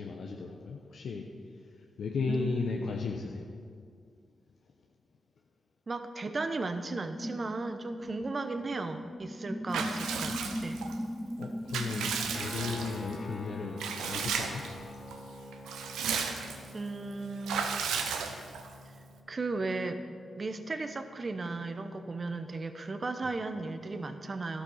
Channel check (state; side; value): normal; both; correlation 0.80